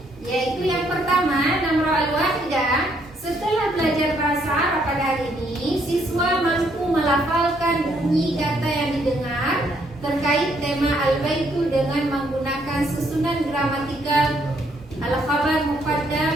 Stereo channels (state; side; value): normal; both; correlation 0.70